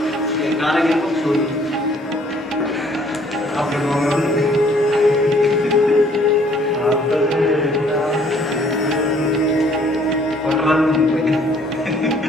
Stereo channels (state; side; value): normal; both; correlation 0.61